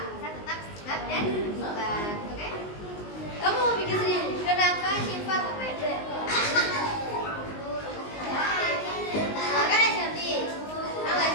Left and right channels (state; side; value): late; right; 19 ms